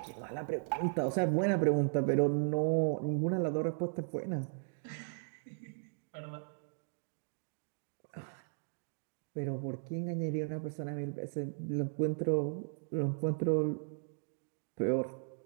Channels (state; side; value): silent; left; digital silence